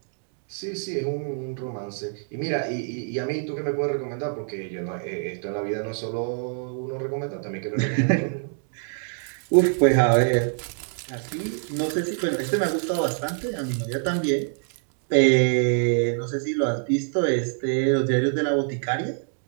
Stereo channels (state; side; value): silent; left; 61 dB below the other